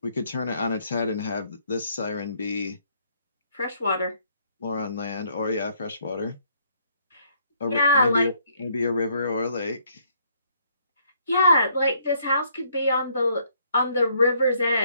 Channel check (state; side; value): inverted; both; correlation -0.68